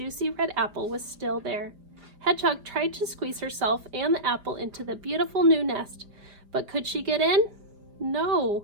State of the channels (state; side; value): late; left; 4.9 ms